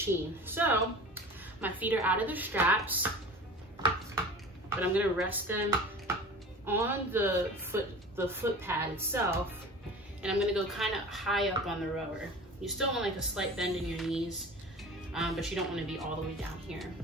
So my feet are out of the straps, but I'm gonna rest them on the foot pad itself, and I'm gonna go kind of high up on the rower. You still want like a slight bend in your knees, but you don't want to be all the way down here.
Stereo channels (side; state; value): both; normal; correlation 0.38